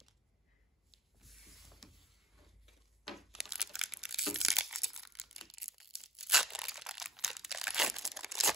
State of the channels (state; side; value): normal; both; correlation 0.47